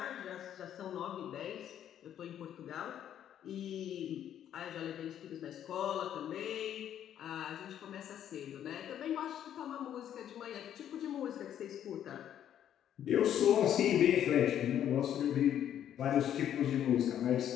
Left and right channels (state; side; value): quieter; right; 10.3 dB